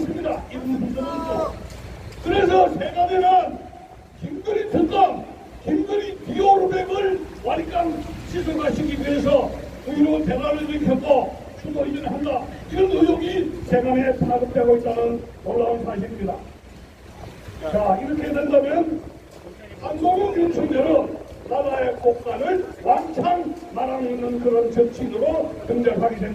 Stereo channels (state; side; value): identical; both; correlation 1.00